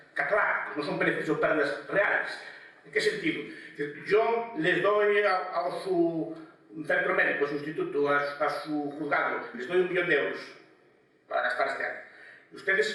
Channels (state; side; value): identical; both; correlation 1.00